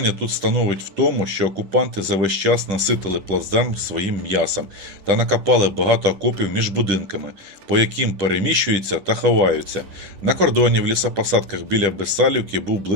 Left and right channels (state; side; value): late; left; 10 ms